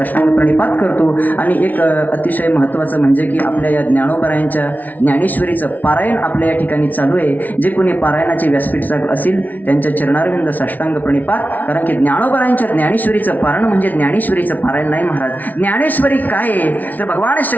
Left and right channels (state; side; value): late; right; 0.077 ms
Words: प्रणिपात करतो. आणि एक अतिशय महत्त्वाचं म्हणजे की आपल्या या ज्ञानोबरायांच्या ज्ञानेश्वरीचं पारायण आपल्या या ठिकाणी चालू आहे. जे कोणी पारायणाचे व्यासपीठ असेल त्यांच्या चरणारविंद साष्टांग प्रणिपात. कारण की ज्ञानोबरायांच्या ज्ञानेश्वरीचं पारायण म्हणजे ज्ञानेश्वरीचं पारायण नाही महाराज. ज्ञानेश्वरी काय आहे तर भगवान